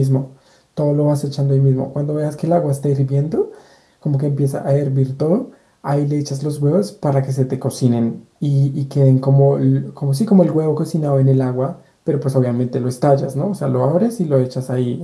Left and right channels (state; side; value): identical; both; correlation 1.00